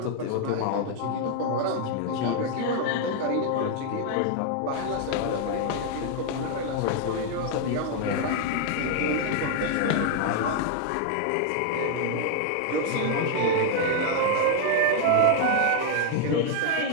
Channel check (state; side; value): different; both; correlation 0.00